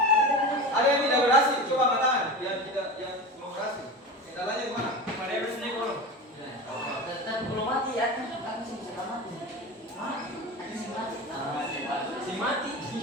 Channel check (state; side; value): normal; both; correlation 0.28